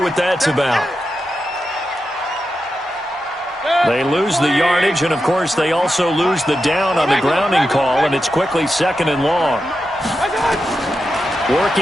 that's about. They lose the yardage, and, of course, they also lose the down on the grounding call, and it's quickly 2nd and long.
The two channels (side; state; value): both; normal; correlation 0.89